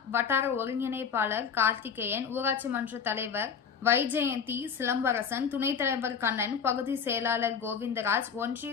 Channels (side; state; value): right; quieter; 6.7 dB